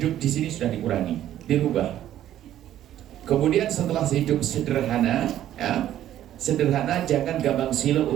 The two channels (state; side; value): quieter; left; 12.1 dB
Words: di sini sudah dikurangi, dirubah. Kemudian setelah hidup sederhana, sederhana, jangan gampang silo